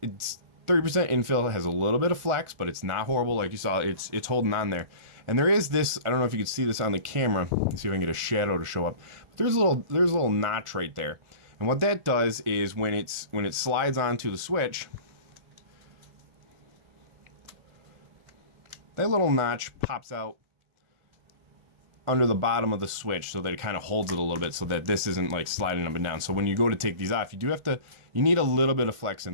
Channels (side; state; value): left; late; 1.4 ms